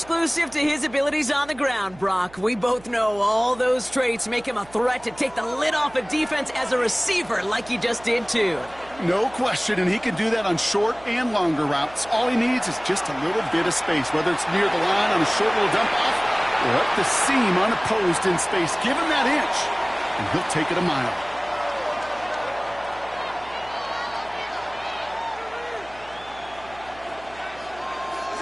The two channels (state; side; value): noise; right; hum, 23 dB below the sound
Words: to his abilities on the ground, Brock. We both know all those traits make him a threat to take the lid off a defense as a receiver like he just did too. No question, and he can do that on short and longer routes. All he needs is just a little bit of space, whether it's near the line on a short little dump off or up the seam unopposed in space. Give him that inch, and he'll take it a mile.